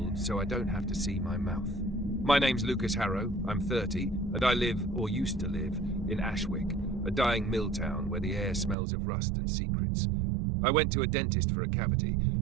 so I don't have to see my mouth. My name's Lucas Harrow, I'm 30, and I live, or used to live, in Ashwick, a dying mill town where the air smells of rust and secrets. I went to a dentist for a cavity,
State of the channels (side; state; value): left; drops out; at 8.8 s